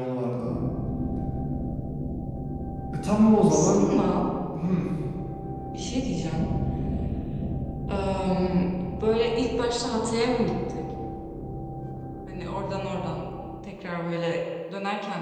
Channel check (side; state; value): both; identical; correlation 1.00